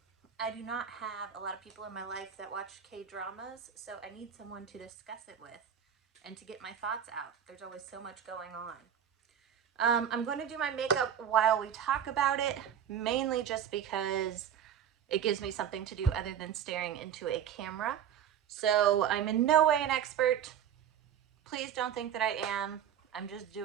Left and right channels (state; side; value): quieter; left; 9.1 dB